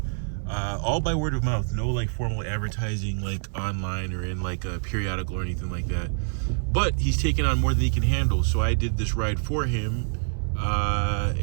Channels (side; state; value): left; silent; digital silence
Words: all by word of mouth. No like formal advertising like online or in like a periodical or anything like that. But he's taken on more than he can handle. So I did this ride for him,